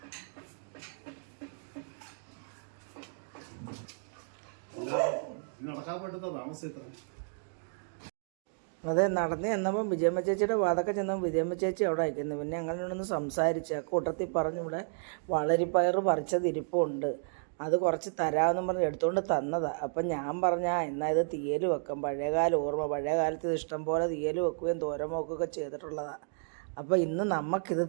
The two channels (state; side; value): silent; left; digital silence